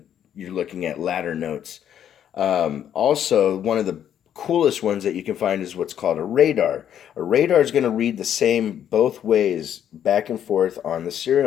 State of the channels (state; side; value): quieter; right; 9.8 dB